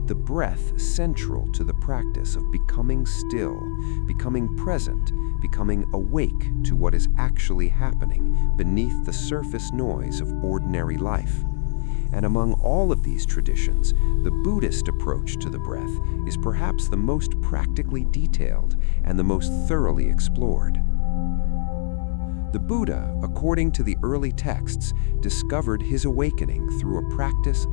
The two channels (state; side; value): silent; right; digital silence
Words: the breath central to the practice of becoming still, becoming present, becoming awake to what is actually happening beneath the surface noise of ordinary life. And among all of these traditions, the Buddhist approach to the breath is perhaps the most practically detailed and the most thoroughly explored. The Buddha, according to the early texts, discovered his awakening through a practice